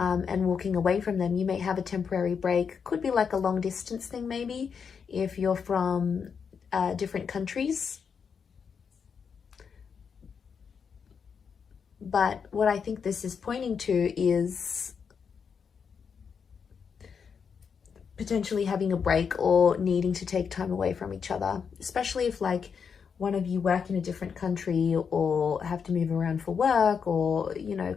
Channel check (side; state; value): right; quieter; 6.4 dB